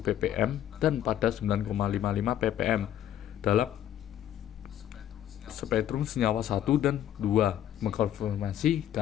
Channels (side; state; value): right; quieter; 11.2 dB